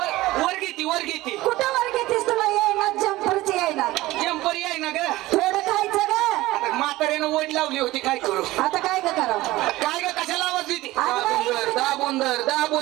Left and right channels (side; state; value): left; quieter; 18.0 dB